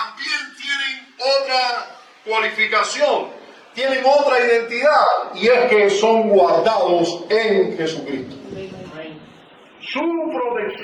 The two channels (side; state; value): both; identical; correlation 1.00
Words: tienen otra cualificación, tienen otra identidad, y es que son guardados en Jesucristo. Su